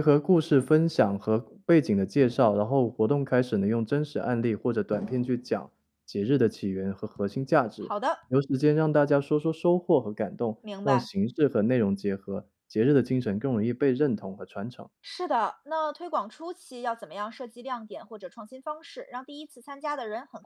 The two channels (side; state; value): both; identical; correlation 1.00